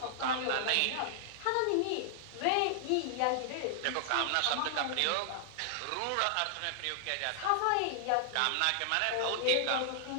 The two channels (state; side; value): different; both; correlation -0.01